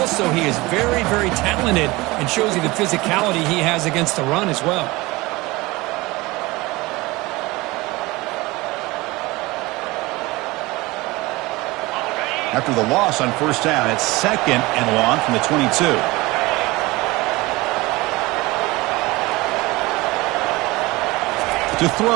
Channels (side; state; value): left; quieter; 21.6 dB